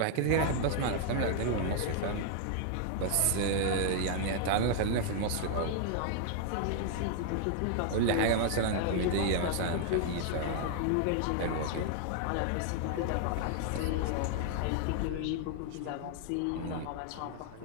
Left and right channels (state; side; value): different; both; correlation 0.00